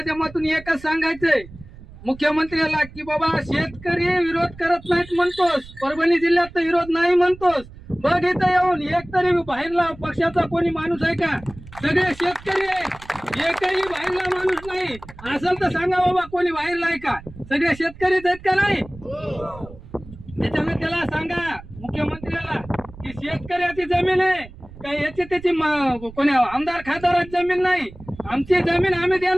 एकच सांगायचंय मुख्यमंत्र्याला की बाबा शेतकरी विरोध करत नाहीत म्हणतोस, परभणी जिल्ह्यात तर विरोध नाही म्हणतोस, बघ इथं येऊन एक तरी बाहेरला पक्षाचा कोणी माणूस आहे का? सगळे शेतकरी आहे, एकही बाहेरला माणूस नाही. असेल तर सांगा बाबा कोणी बाहेरला आहे का? सगळे शेतकरीच आहेत का? नाही. त्याच्यामुळे त्याला सांगा मुख्यमंत्र्याला की शेतकऱ्याची जमीन आहे का याची त्याची कोणी आमदार खासदाराची जमीन नाही. आमची जमीन आम्ही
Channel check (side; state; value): right; noise; rumble, 18 dB below the sound